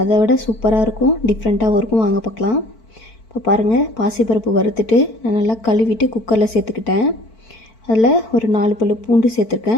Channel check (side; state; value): right; late; 4.5 ms